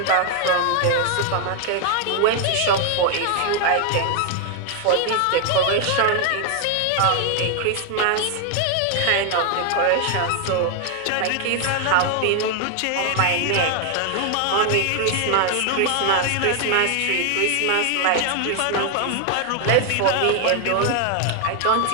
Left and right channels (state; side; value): different; both; correlation 0.00